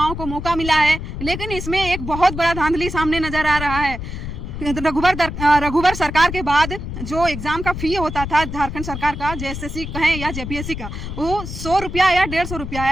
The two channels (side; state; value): left; noise; rumble, 7 dB below the sound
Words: को मौका मिला है, लेकिन इसमें एक बहुत बड़ा धांधली सामने नजर आ रहा है। रघुवर सरकार के बाद जो एग्जाम का फी होता था झारखंड सरकार का, जेएसएससी कहें या जेपीएससी का, वो 100 रुपया या 150 रुपया